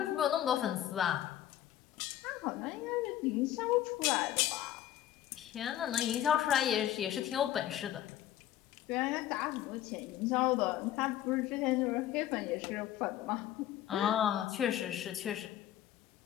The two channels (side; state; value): right; quieter; 12.3 dB